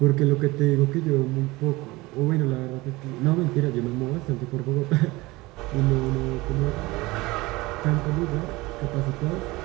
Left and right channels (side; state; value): left; quieter; 21.3 dB